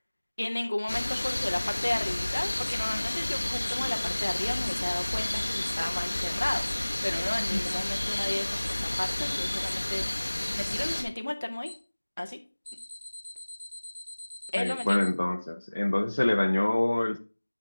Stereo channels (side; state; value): both; inverted; correlation -1.00